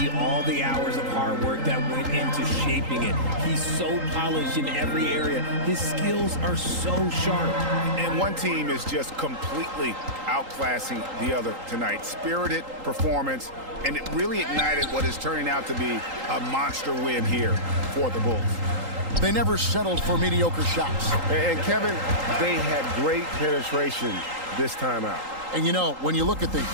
all the hours of hard work that went into shaping it. He's so polished in every area. His skills are so sharp. And one team is just completely outclassing the other tonight. Spirited performance, and it really ignited what is turning out to be a monster win here for the Bulls. They never settled for mediocre shots. And Kevin, they had great penetration this time out. And you know, when you look at the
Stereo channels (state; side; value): late; left; 3.8 ms